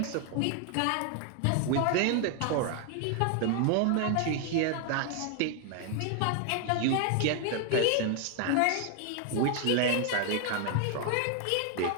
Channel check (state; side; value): different; both; correlation 0.00